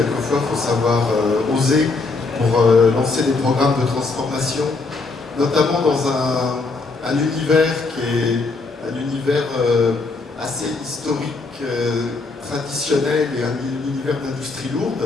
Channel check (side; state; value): right; quieter; 3.8 dB